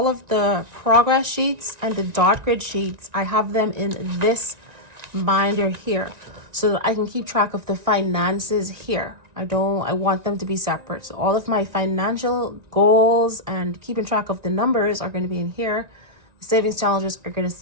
of the progress sheets and the dot grid sheets, I have them in this binder here. so that I can keep track of the finances here. I want them to be separate. So all of my financial goals and keeping track of the numbers are going to be in here. The savings challenges are going to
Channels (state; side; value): late; left; 1.9 ms